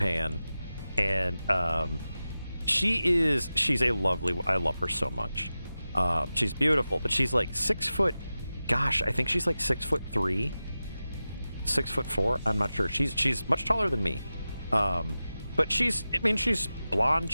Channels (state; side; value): inverted; both; correlation -0.94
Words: and she's a lovely. I love her so much. She's beautiful, but she's like 6 foot. Gosh, I think she's like 6'3", 6'4". I'm not sure. She's much taller than me. But she's blonde.